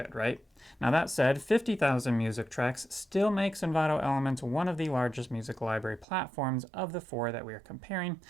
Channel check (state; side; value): drops out; left; at 6.1 s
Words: right? Now that said, 50,000 music tracks still makes Envato Elements one of the largest music library platforms of the 4 that we are comparing,